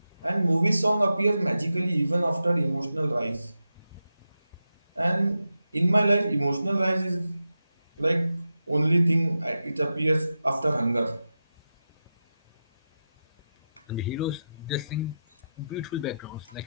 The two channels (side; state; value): both; inverted; correlation -0.90